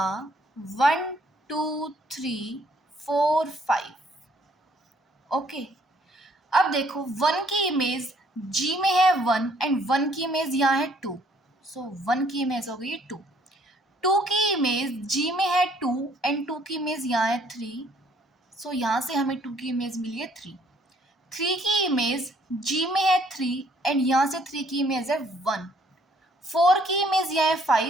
1 2 3 4 5. ओके, अब देखो 1 की इमेज जी में है 1 एंड 1 की इमेज यहाँ है 2. सो 1 की इमेज हो गई 2. 2 की इमेज जी में है 2 एंड 2 की इमेज यहाँ है 3. सो यहाँ से हमें 2 की इमेज मिली है 3. 3 की इमेज जी में है 3 एंड यहाँ से 3 की इमेज है 1. 4 की इमेज यहाँ है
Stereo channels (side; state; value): both; normal; correlation 0.63